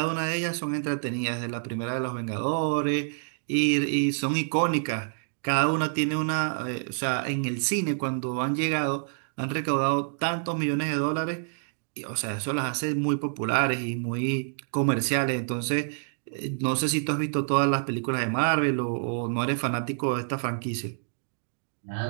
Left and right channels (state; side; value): silent; left; digital silence